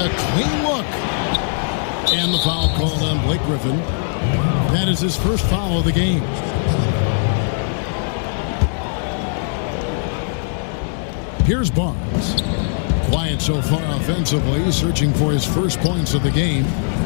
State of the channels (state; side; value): silent; right; digital silence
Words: clean look. And the foul called on Blake Griffin. That is his first foul of the game. Here's Barnes. Quiet so far offensively, searching for his first points of the game.